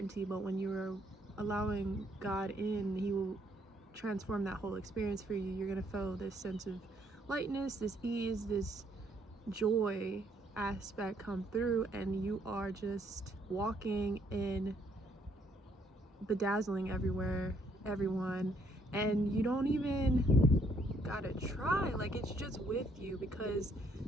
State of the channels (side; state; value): both; normal; correlation 0.69